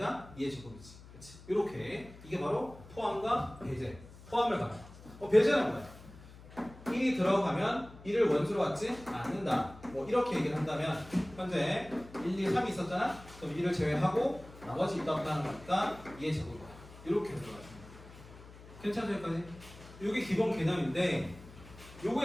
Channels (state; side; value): noise; left; hum, 19 dB below the sound